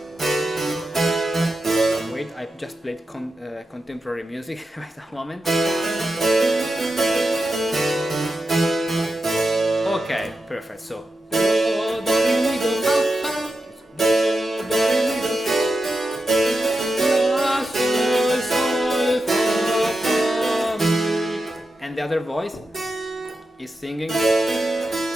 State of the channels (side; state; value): both; normal; correlation 0.90